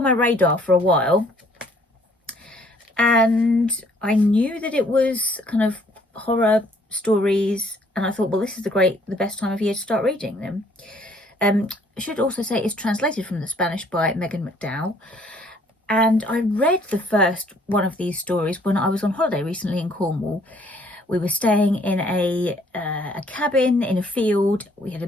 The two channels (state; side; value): normal; both; correlation 0.62